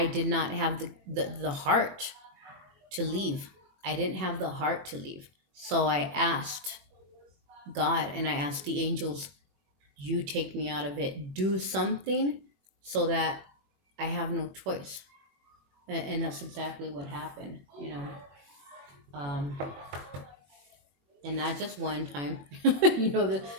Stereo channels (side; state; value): left; late; 21 ms